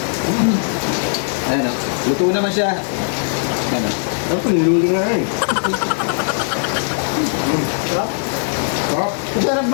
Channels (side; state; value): right; silent; digital silence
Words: Ayan o, luto naman siya. Ayan o. Ano pa, niluli nga eh. Sarap. Sarap. Masarap